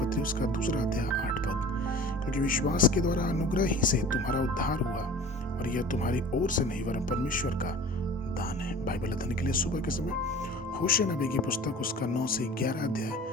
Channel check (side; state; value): both; normal; correlation 0.43